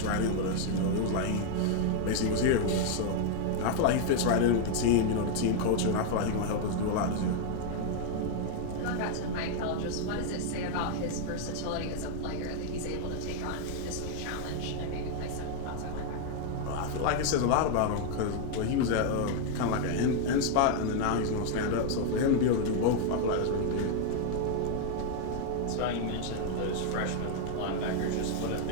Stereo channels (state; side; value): different; both; correlation 0.00